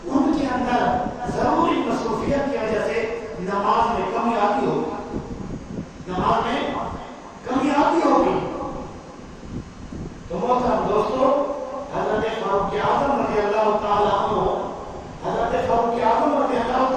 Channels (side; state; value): both; identical; correlation 1.00